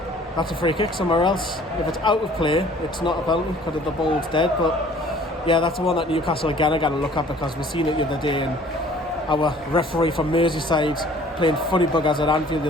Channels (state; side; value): normal; both; correlation 0.53